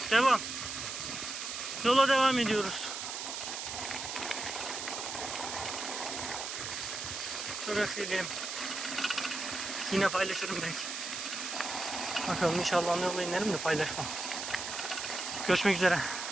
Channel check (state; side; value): noise; right; hiss, 5 dB below the sound